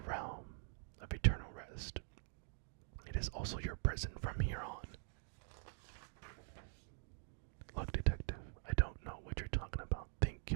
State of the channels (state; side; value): silent; left; digital silence